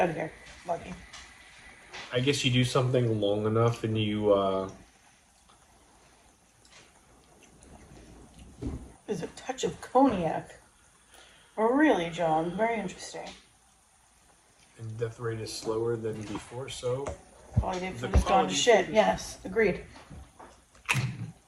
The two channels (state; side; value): identical; both; correlation 1.00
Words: of here, Lucky. I guess you do something long enough and you, There's a touch of cognac. Oh, really, John? Very interesting. And death rate is slower than before, so... Quality of food has gone to shit. Yes, agreed.